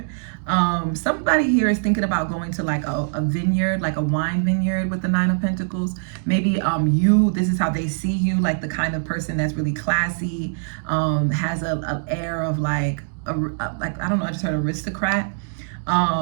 Somebody here is thinking about going to like a vineyard, like a wine vineyard with the Nine of Pentacles. Maybe this is how they see you, like the kind of person that's really classy, has an air of like I don't know, I just heard aristocrat.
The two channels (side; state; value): left; silent; digital silence